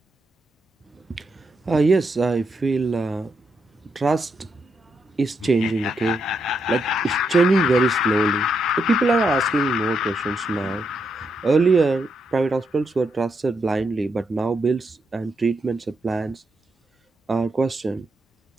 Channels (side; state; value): both; normal; correlation 0.80